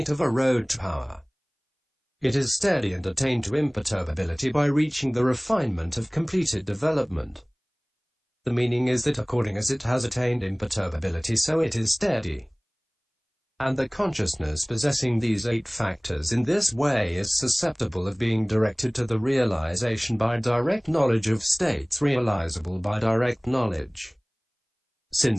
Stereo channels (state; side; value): identical; both; correlation 1.00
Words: of a road to power. It is steady and attained to imperturbability by reaching the refinement of completed development. The meaning is that according as it has attained imperturbability, so it is steady. And the consciousness possessing these 8 factors in this way is susceptible of being directed to the realization by direct knowledge of states realizable by direct knowledge,